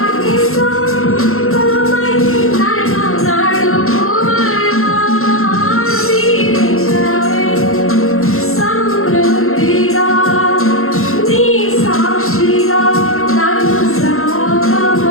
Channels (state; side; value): late; right; 0.62 ms